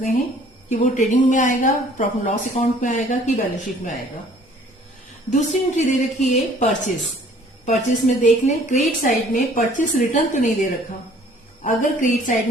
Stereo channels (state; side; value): normal; both; correlation 0.55